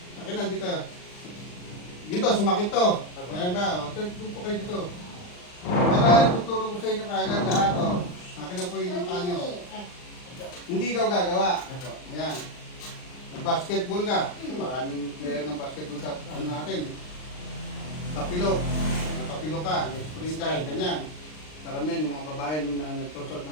Akin na dito. Dito, sumakit to. Ayan ba? Doon po kayo dito. Kaya tuturo ko sa inyo kaagad lahat. Akin na po yung panyo. Hindi ikaw gagawa. Ayan. Nag-basketball ka. Maraming player ng basketball sa ano natin. Tapilo. Tapilo ka. Nag-spring ka. Ganyan. Karamihan yung mga babae nung nagtosot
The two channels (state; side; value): late; right; 39 ms